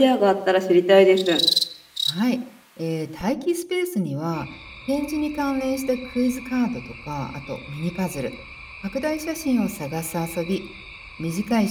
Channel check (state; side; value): identical; both; correlation 1.00